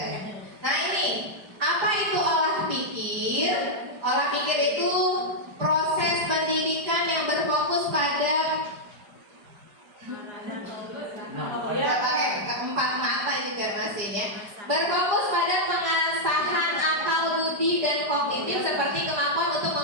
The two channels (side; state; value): left; late; 5.0 ms